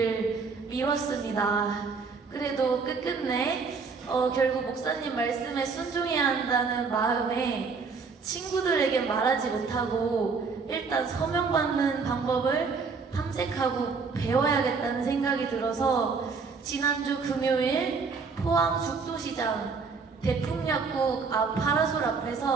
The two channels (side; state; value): left; quieter; 4.9 dB